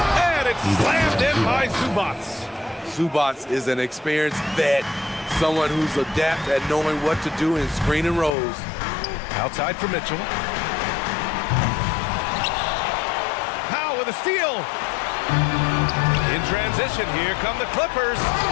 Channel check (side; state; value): right; drops out; at 8.3 s